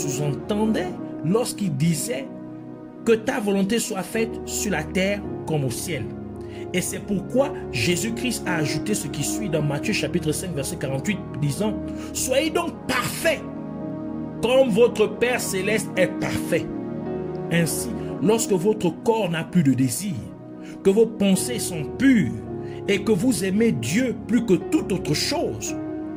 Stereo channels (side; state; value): both; identical; correlation 1.00